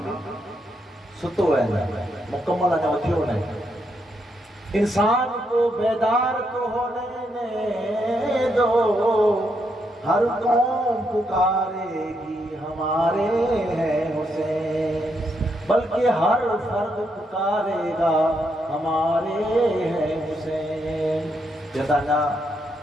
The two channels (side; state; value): both; normal; correlation 0.79